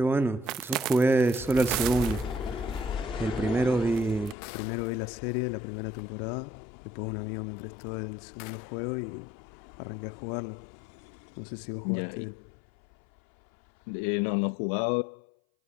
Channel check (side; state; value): right; drops out; at 4.4 s